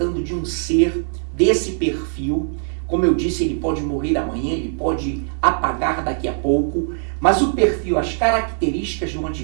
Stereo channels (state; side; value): silent; left; 65 dB below the other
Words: de um ser desse perfil. Como eu disse, ele pode morrer amanhã, ele pode apagar daqui a pouco, mas o perfil, as características do